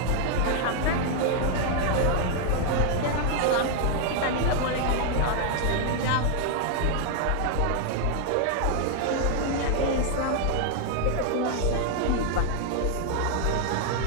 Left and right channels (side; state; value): both; different; correlation 0.00